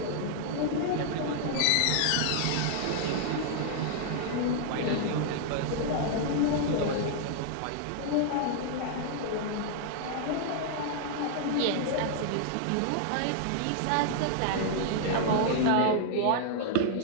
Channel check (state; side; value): different; both; correlation -0.01